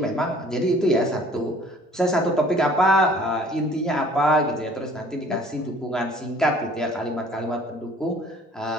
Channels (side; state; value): both; normal; correlation 0.53